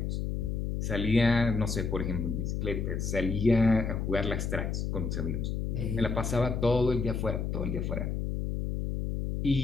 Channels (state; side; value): noise; left; hum, 1 dB below the sound